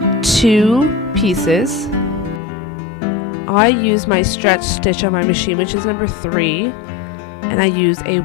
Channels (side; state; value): right; drops out; at 2.4 s